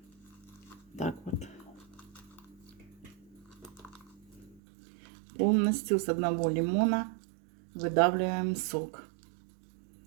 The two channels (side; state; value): left; drops out; at 4.6 s